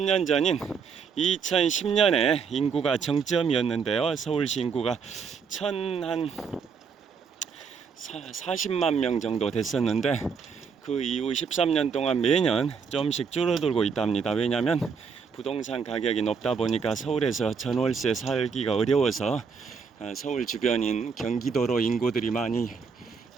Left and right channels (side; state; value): left; quieter; 5.9 dB